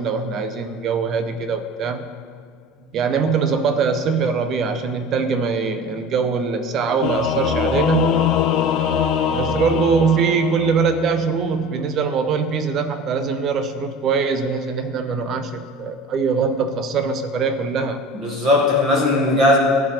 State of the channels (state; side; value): normal; both; correlation 0.39